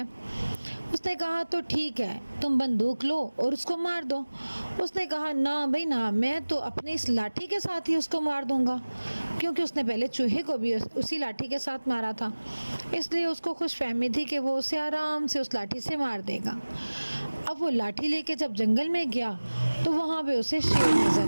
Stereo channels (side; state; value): both; inverted; correlation -1.00